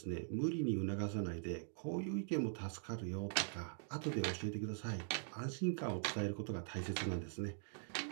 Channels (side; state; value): left; silent; digital silence